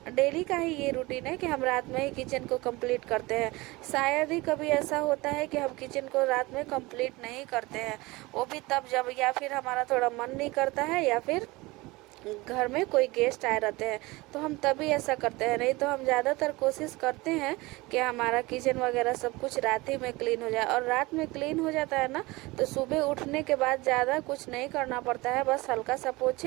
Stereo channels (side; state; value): left; quieter; 22.2 dB